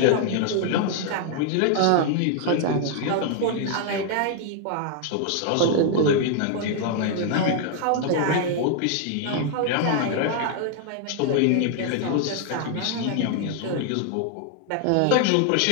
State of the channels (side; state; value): both; different; correlation 0.00